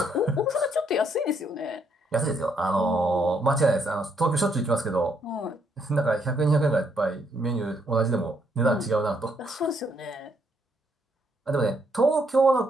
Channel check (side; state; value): both; normal; correlation 0.73